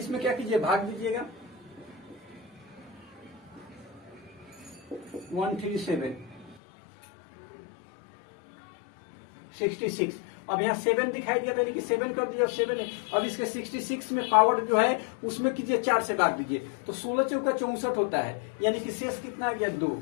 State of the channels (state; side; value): drops out; right; at 6.6 s